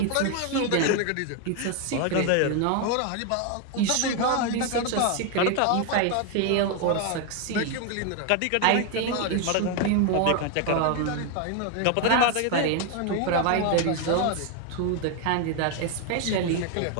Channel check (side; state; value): both; different; correlation 0.01